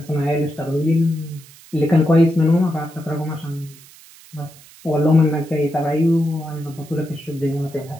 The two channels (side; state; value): right; noise; hiss, 23 dB below the sound